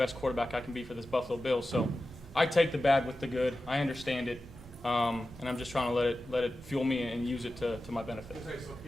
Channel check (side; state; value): both; normal; correlation 0.94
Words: quarterback I can be for this Buffalo Bills. So I take the bad with the good. I understand it, and I'm just trying to let it fuel me and use it to my benefit.